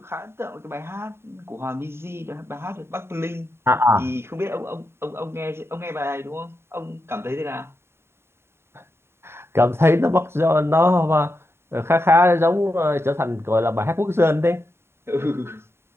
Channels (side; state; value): left; late; 0.12 ms